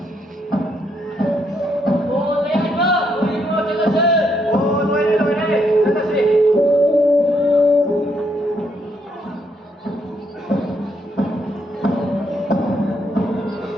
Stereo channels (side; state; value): both; normal; correlation 0.74